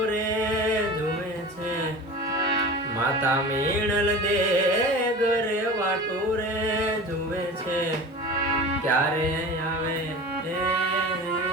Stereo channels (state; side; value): normal; both; correlation 0.34